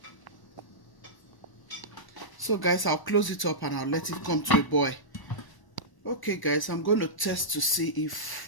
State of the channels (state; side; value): late; right; 1.0 ms